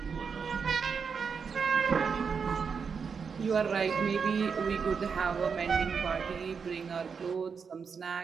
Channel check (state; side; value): quieter; left; 5.9 dB